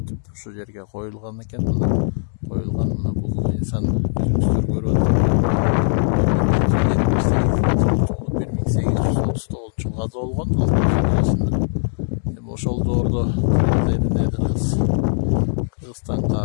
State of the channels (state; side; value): silent; right; digital silence